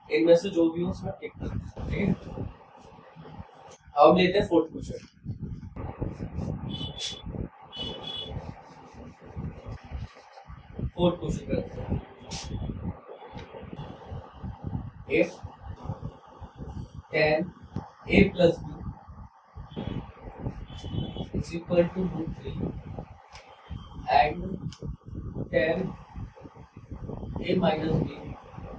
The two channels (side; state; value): both; identical; correlation 1.00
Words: इनमें से जो भी हो उसमें टिक करना है। ठीक है, अब लेते हैं फोर्थ क्वेश्चन। फोर्थ क्वेश्चन करते हैं, if tan a plus b is equal to √3 and tan a minus b